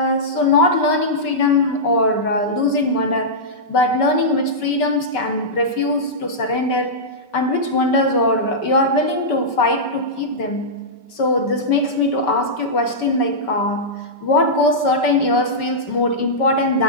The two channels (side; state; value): right; late; 5.2 ms